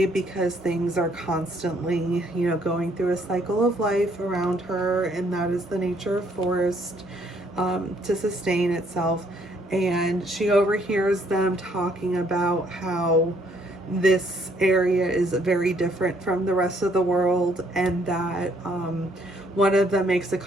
because things are constantly, you know, going through a cycle of life around her, and that is the nature of forest, to sustain itself. And she overhears them talking about how this area is very different from the rest of the world, and that one of them makes a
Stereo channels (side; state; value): both; normal; correlation 0.66